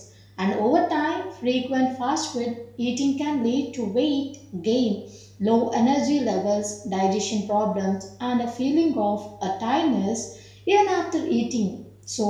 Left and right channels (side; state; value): both; identical; correlation 1.00